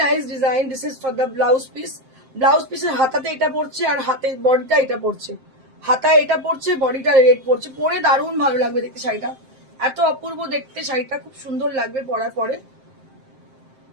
nice design. This is for the blouse piece. Blouse piece এর হাতাতে এটা পড়ছে, আর হাতে বডিটা এটা পড়ছে। হাতা এটা পড়ছে, বডিটা রেড পড়ছে। পরে দারুণ ভালো লাগবে দেখতে শাড়িটা, এত অপূর্ব দেখতে শাড়িটা, খুব সুন্দর লাগবে পরার পরে।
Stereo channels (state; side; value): late; left; 7.6 ms